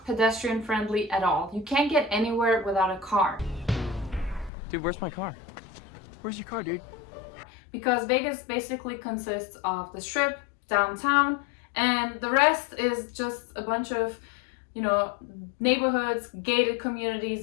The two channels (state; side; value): drops out; right; at 4.5 s